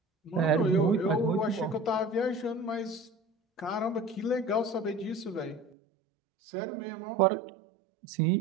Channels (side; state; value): left; drops out; at 5.7 s